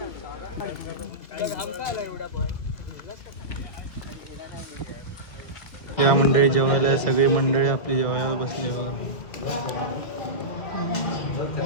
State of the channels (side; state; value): right; late; 2.2 ms